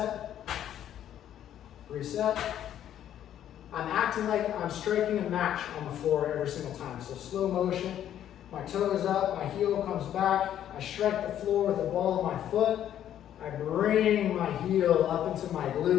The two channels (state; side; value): quieter; right; 10.8 dB